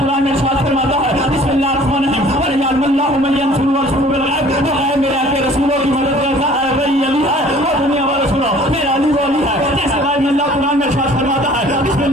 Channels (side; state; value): both; normal; correlation 0.51